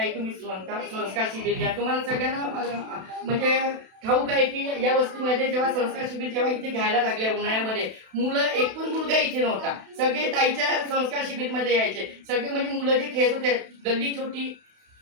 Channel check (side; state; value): left; late; 32 ms